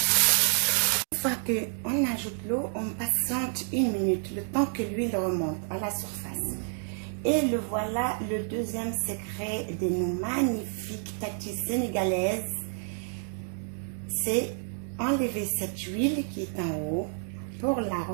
Une fois qu'on ajoute l'eau, on patiente 1 minute, le temps que l'huile remonte à la surface. Et le voilà, le deuxième secret de nos magnifiques tatis sénégalaises, c'est enlever cette huile qui est en haut pour la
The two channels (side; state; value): left; silent; 57 dB below the other